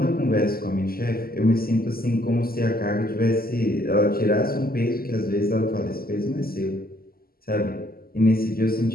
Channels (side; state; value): right; late; 0.43 ms